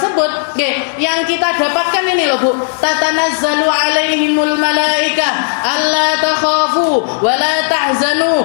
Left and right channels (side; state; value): right; silent; digital silence